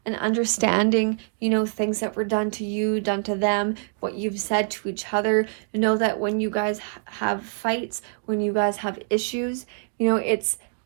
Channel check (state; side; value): silent; left; digital silence